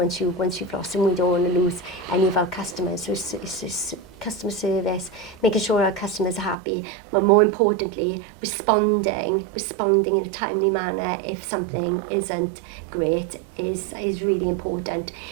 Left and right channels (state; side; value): drops out; left; at 6.6 s